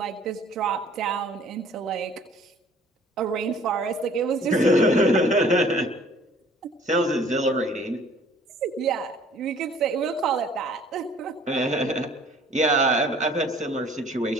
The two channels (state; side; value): normal; both; correlation 0.54